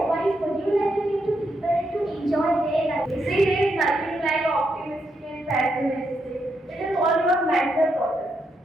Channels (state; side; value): normal; both; correlation 0.80